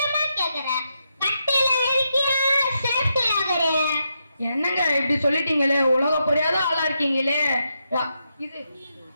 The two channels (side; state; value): both; inverted; correlation -0.83